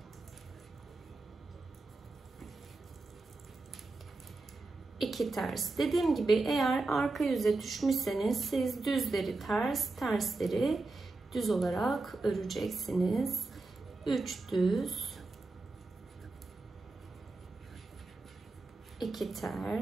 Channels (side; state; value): left; quieter; 3.4 dB